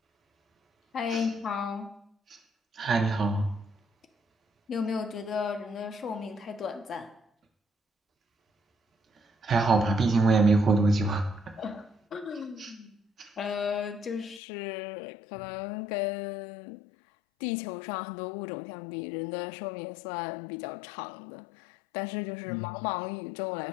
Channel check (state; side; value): drops out; right; at 14.4 s